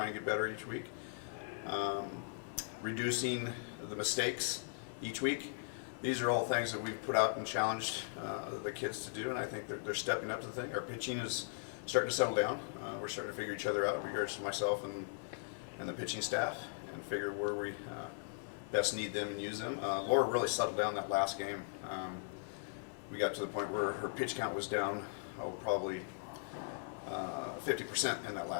and get better each week, reducing the mistakes each week. These are all things that we've put out and challenged the kids to do, and I think they're stepping up to the thing. Our pitching is starting to settle down. We're starting to figure each other out in regards to myself and the pitching staff, and figure where we best need them and use them. Laura really settled down that last game. We got to the point where her pitch count was down, probably 50% in that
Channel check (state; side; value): silent; right; 52 dB below the other